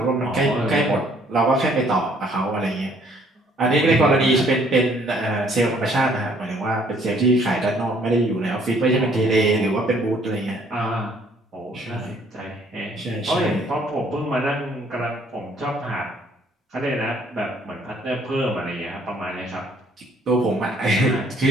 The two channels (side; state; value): both; normal; correlation 0.62